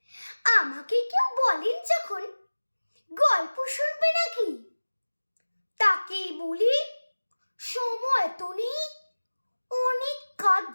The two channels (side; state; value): both; inverted; correlation -1.00